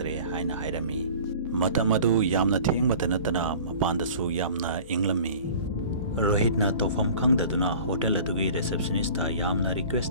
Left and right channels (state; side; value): inverted; both; correlation -0.44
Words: ꯍꯥꯏꯅ ꯍꯥꯏꯔꯝꯃꯤ꯫ ꯃꯇꯝ ꯑꯗꯨ ꯌꯥꯝꯅ ꯊꯦꯡꯕꯇ ꯅꯠꯇꯅ ꯃꯄꯥꯟꯗꯁꯨ ꯌꯥꯝꯅ ꯏꯪꯂꯝꯃꯤ꯫ ꯔꯣꯍꯤꯠꯅ ꯇꯧꯐꯝ ꯈꯪꯗꯗꯨꯅ ꯍꯣꯇꯦꯜ ꯑꯗꯨꯒꯤ ꯔꯤꯁꯦꯞꯁꯅꯤꯁꯇ ꯌꯥꯝꯅ ꯔꯤꯀ꯭ꯋꯦꯁ